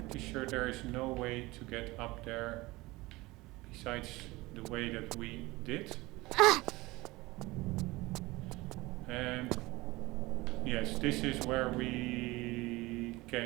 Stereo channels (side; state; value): left; quieter; 21.0 dB